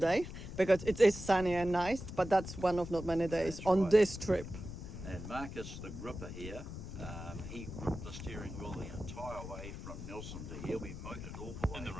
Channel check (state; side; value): noise; left; rumble, 9 dB below the sound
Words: because it is sunny and nice, but that's one of not many days That's on right. this trip. And Marcus, the gripper here, he gripped the steering wheel the entire way from Nelson to here. We motored all the way In the